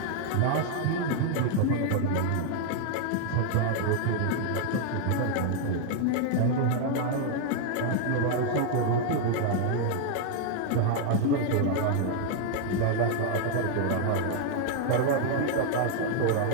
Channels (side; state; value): both; different; correlation 0.00